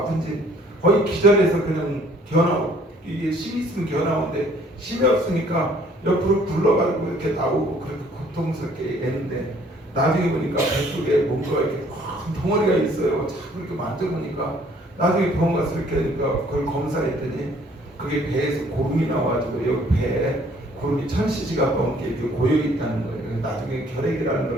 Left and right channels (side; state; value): both; normal; correlation 0.59